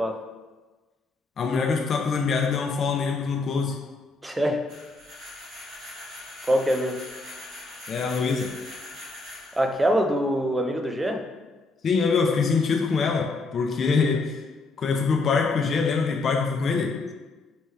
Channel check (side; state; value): right; quieter; 3.2 dB